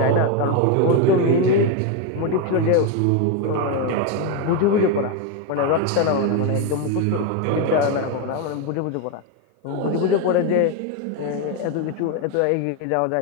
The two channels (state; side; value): different; both; correlation 0.02